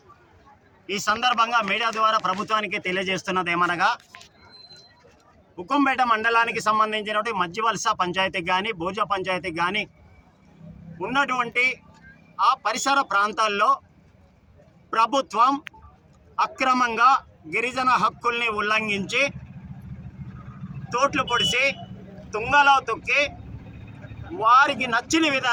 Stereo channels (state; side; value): identical; both; correlation 1.00